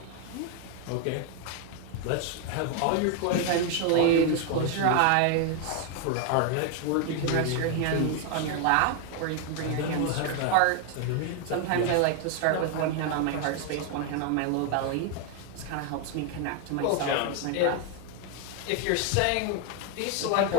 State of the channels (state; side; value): different; both; correlation 0.00